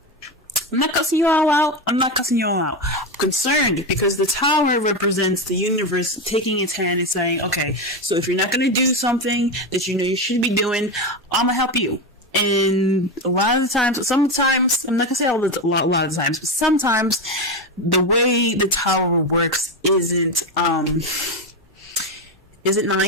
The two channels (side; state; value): both; normal; correlation 0.15